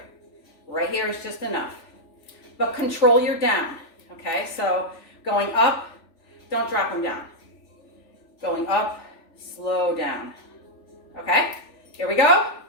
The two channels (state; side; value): late; right; 3.4 ms